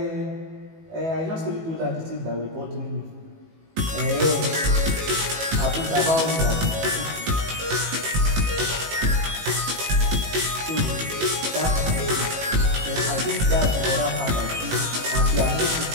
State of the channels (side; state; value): left; late; 18 ms